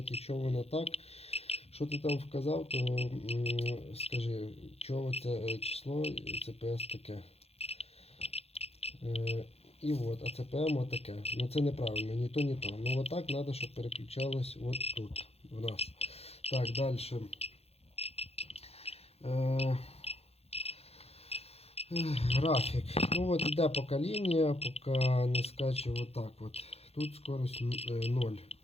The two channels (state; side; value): late; right; 0.29 ms